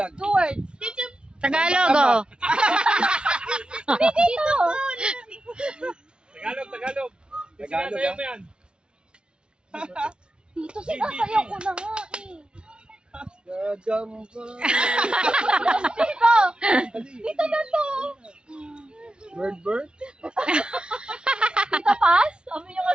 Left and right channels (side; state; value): left; late; 0.055 ms